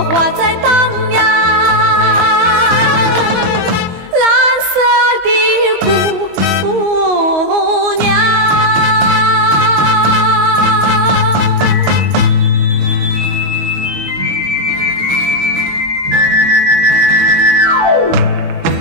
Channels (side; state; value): left; late; 22 ms